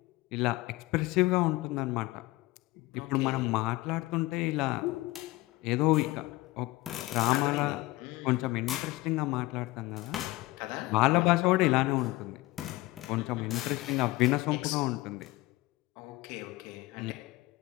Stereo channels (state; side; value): quieter; right; 20.1 dB